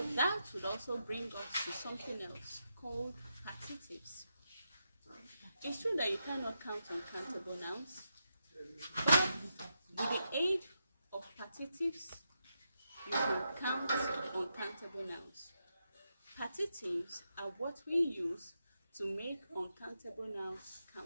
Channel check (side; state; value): both; inverted; correlation -0.85